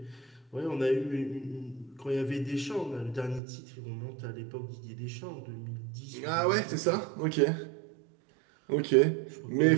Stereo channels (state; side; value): drops out; left; at 3.4 s